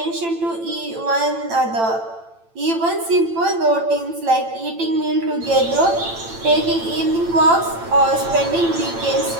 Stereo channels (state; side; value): late; left; 8.9 ms